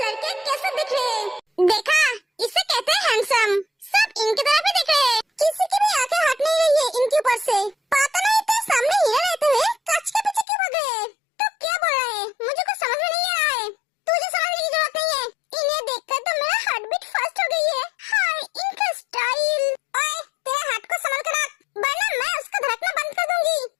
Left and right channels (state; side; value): drops out; right; at 10.5 s